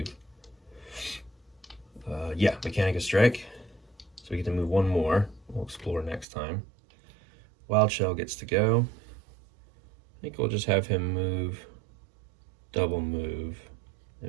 Yeah, Mechanica Strike. So we get to move one more. We'll explore next time. Wild Shell gets to go. I think we'll just have him move, double move,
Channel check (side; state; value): left; drops out; at 6.2 s